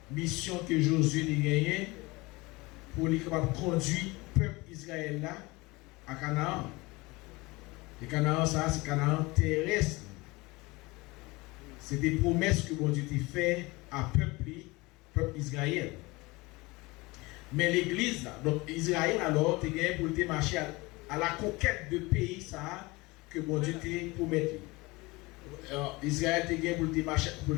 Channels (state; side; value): quieter; right; 23.2 dB